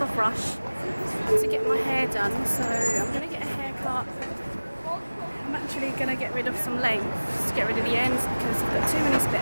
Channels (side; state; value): both; inverted; correlation -1.00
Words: Rush to get my hair done. So I'm going to get a haircut. I'm actually going to get rid of some lengths to get rid of the ends because I've got too many split